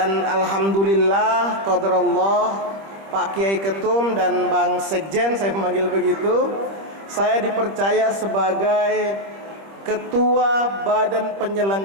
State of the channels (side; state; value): left; late; 25 ms